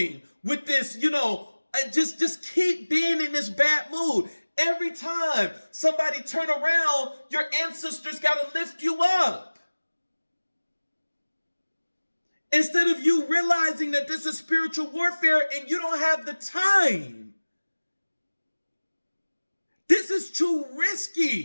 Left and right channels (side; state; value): both; inverted; correlation -1.00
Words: with this, just keep being in this bad mood. Every time somebody turn around, your ancestors got to lift you up. Instead of you realizing that this is spiritual warfare and you don't have the time. This is too